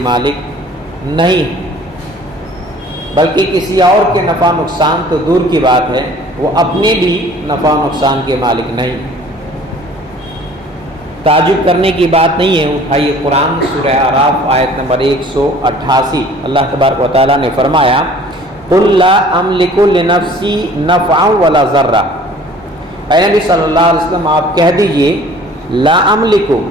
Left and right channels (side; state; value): both; normal; correlation 0.50